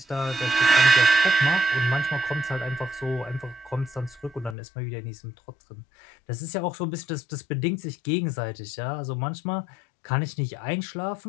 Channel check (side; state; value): right; drops out; at 4.5 s